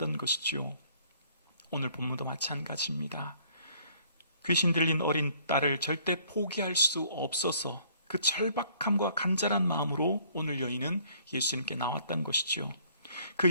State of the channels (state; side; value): inverted; both; correlation -0.61